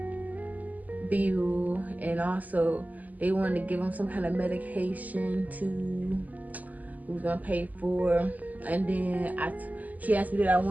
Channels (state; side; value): late; left; 0.079 ms